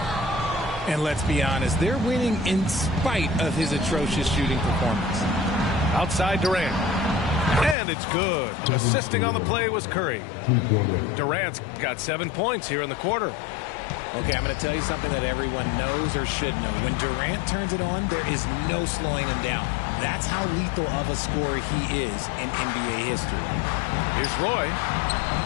And let's be honest, they're winning in spite of his atrocious shooting performance. Outside Durant. And it's good. Assisting on the play was Curry. Durant's got 7 points here in the quarter. Okay, I'm going to tell you something that everyone knows or should know. When Durant turns it on, there is no slowing him down. That's how lethal of a scorer he is in NBA history. Here's Roy.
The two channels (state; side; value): drops out; right; at 7.8 s